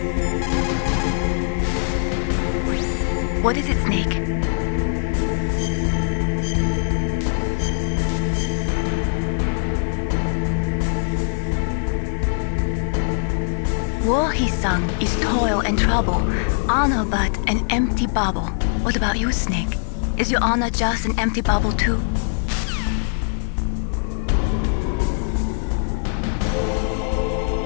What is it, Snake? War, he sung, is toil and trouble, honor but an empty bauble. What about you, Snake? Is your honor just an empty bauble too?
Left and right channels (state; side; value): silent; right; digital silence